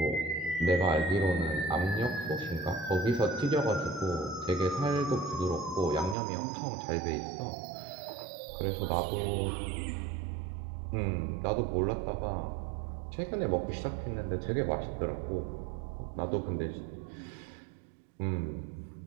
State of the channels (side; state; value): left; drops out; at 6.2 s